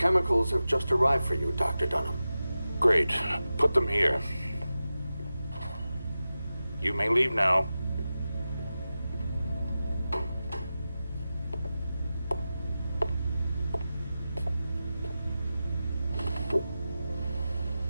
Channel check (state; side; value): inverted; both; correlation -0.93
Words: have just arrived for you, Dr. Dunham. Great. Put them here. You may leave now.